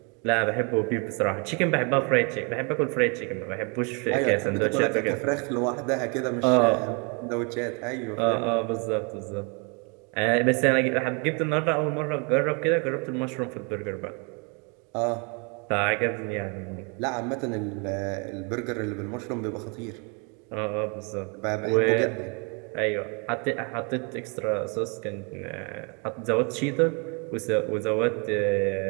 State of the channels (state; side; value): quieter; left; 33.9 dB